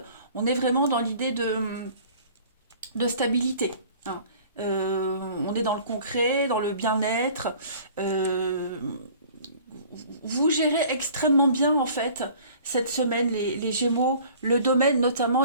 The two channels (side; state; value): both; inverted; correlation -0.49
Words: On est vraiment dans l'idée de stabilité. On est dans le concret, dans le bien-être. Euh, vous gérez extrêmement bien en fait cette semaine les Gémeaux, le domaine